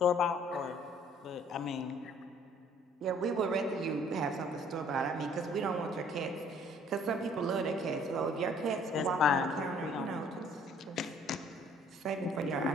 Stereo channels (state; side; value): normal; both; correlation 0.57